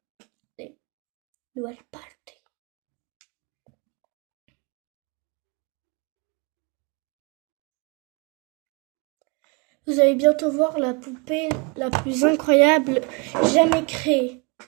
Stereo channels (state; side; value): quieter; left; 31.7 dB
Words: Les Dual Party. Vous allez bientôt voir la poupée la plus incroyable jamais créée.